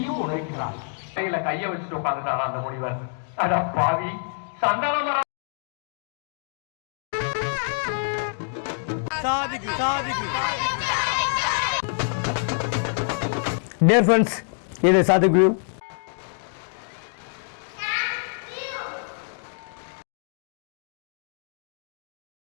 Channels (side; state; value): right; silent; digital silence